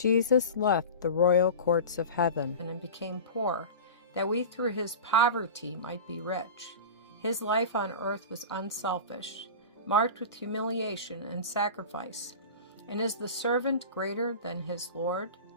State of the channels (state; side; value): inverted; both; correlation -0.31